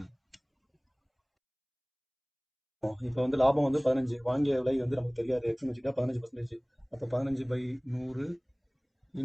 இப்போ வந்து லாபம் வந்து 15. வாங்கிய விலை வந்து நமக்கு தெரியாது, எக்ஸ்னு வச்சுக்கிட்டா 15%. அப்போ 15/100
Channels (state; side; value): identical; both; correlation 1.00